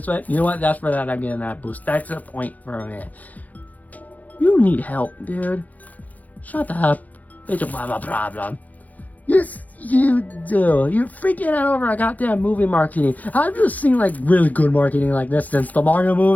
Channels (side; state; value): right; late; 0.078 ms